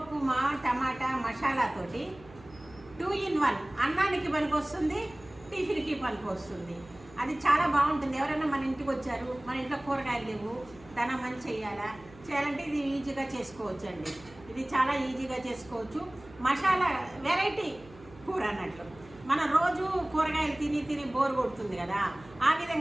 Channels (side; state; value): right; noise; hum, 22 dB below the sound